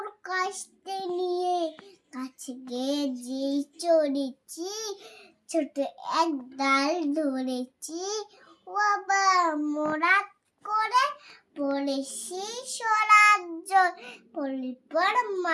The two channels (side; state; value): both; identical; correlation 1.00